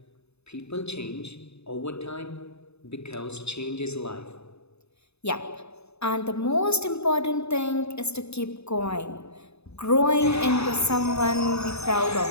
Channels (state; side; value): late; right; 0.80 ms